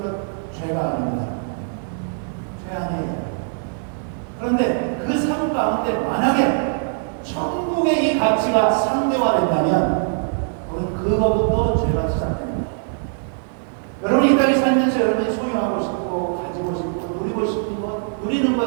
것 죄가 아닙니다. 죄 아니에요. 그런데 그 삶 가운데 만약에 천국의 이 가치가 상대화된다면 그거부터 죄가 시작됩니다. 여러분이 이 땅에 살면서 여러분이 소유하고 싶고 가지고 싶고 누리고 싶은 것, 누리는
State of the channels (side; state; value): left; silent; digital silence